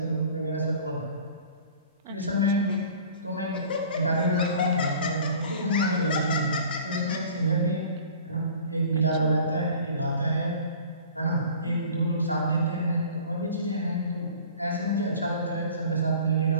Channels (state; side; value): inverted; both; correlation -0.45